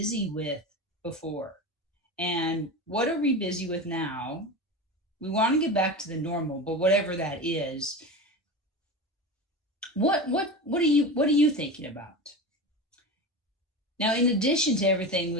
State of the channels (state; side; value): normal; both; correlation 0.26